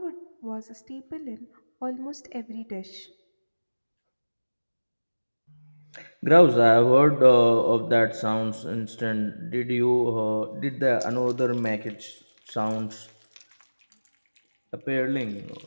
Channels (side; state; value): both; inverted; correlation -1.00